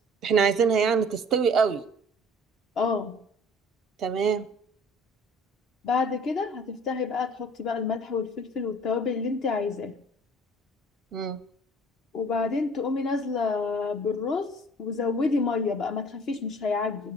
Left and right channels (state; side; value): normal; both; correlation 0.50